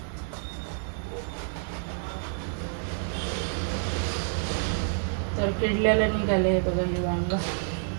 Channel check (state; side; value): silent; left; digital silence